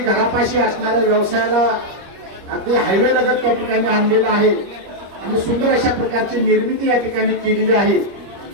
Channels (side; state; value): left; late; 25 ms